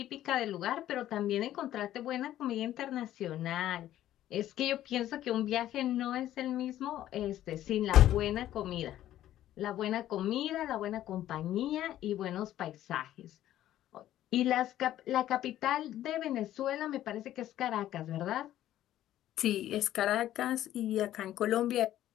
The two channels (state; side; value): quieter; right; 12.9 dB